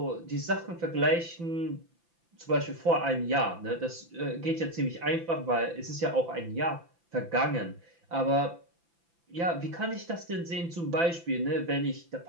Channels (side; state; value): left; late; 5.9 ms